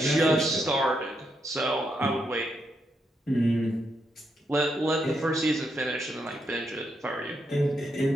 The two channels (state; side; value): normal; both; correlation 0.80